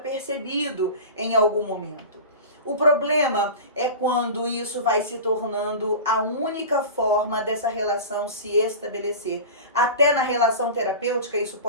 em algum momento. O problema é quando isso vai se tornando a única forma dessa relação se estabelecer. Até na relação terapêutica isso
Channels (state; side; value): inverted; both; correlation -0.31